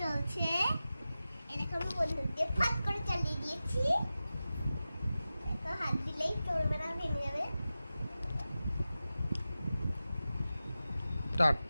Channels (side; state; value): both; inverted; correlation -0.94